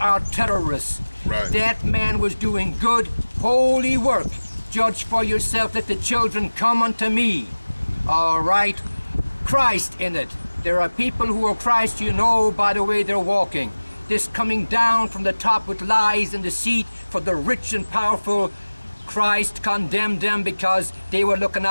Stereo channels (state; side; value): inverted; both; correlation -1.00